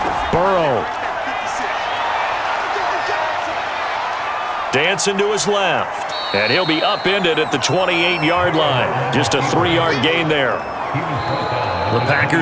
Burrow. Dancing to his left. And he'll be upended at the 28-yard line. Just a 3-yard gain there. The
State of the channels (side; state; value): both; identical; correlation 1.00